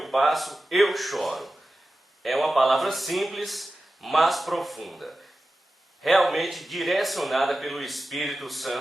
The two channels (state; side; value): normal; both; correlation 0.94